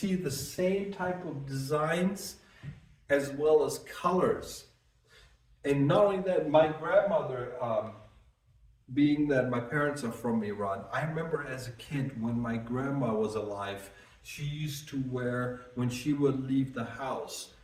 the same type of designs as well as colors. And not only that, my grandmother, being that my parents are from Iran, I remember as a kid when my grandma was alive, she used to wear, when she would leave the house,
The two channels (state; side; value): identical; both; correlation 1.00